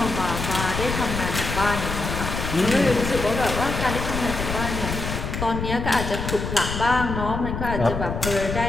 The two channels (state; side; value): noise; left; rumble, 4 dB below the sound